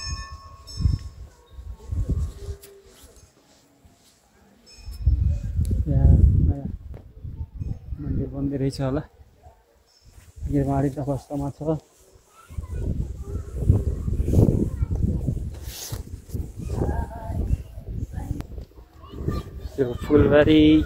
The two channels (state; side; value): identical; both; correlation 1.00